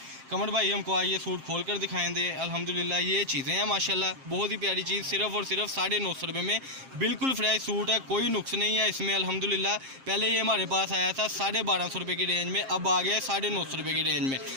कमर भाई हमको आइए सूट खोल कर दिखाएंगे अल्हम्दुलिल्लाह। ये चीज़ें हैं माशाल्लाह, बहुत ही प्यारी चीज़, सिर्फ और सिर्फ 950 रुपये में बिल्कुल फ्रेश सूट है, कोई नुक्स नहीं है इसमें अल्हम्दुलिल्लाह। पहले ये हमारे पास आया था 1250 रुपये की रेंज में, अब आ गया 950 रुपये की रेंज में।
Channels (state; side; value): late; left; 7.5 ms